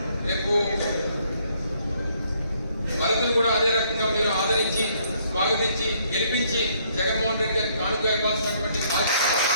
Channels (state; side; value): inverted; both; correlation -0.68